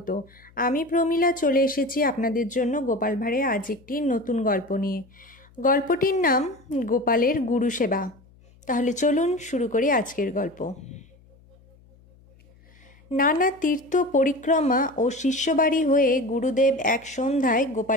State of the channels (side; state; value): left; noise; hum, 28 dB below the sound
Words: আমি প্রমীলা চলে এসেছি আপনাদের জন্য গোপাল ভাঁড়ের আজ একটি নতুন গল্প নিয়ে। গল্পটির নাম গোপালের গুরু সেবা। তাহলে চলুন শুরু করি আজকের গল্প। নানা তীর্থ পরিক্রমা ও শিষ্যবাড়ি হয়ে গুরুদেব এক সন্ধ্যায়